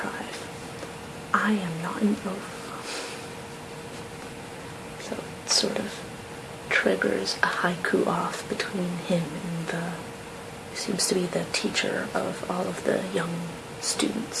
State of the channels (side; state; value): both; identical; correlation 1.00